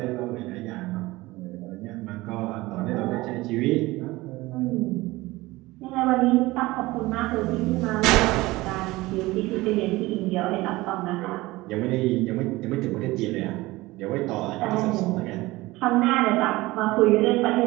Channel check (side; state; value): left; quieter; 19.9 dB